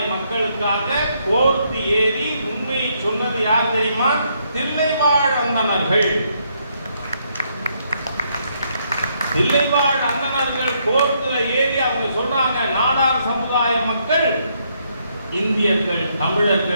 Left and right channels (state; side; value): inverted; both; correlation -0.73